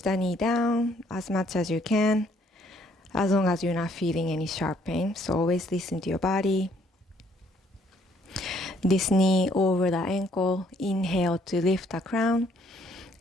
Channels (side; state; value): both; normal; correlation 0.65